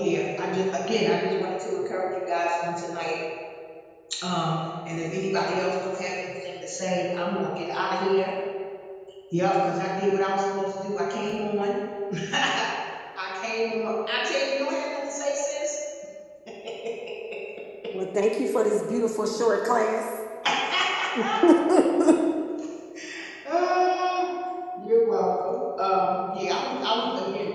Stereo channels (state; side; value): identical; both; correlation 1.00